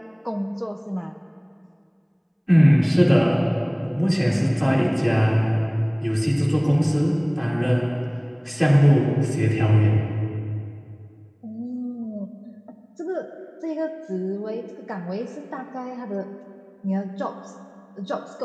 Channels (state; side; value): identical; both; correlation 1.00